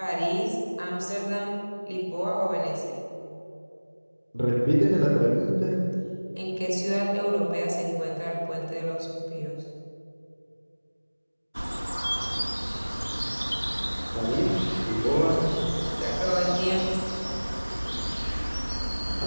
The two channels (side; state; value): both; inverted; correlation -1.00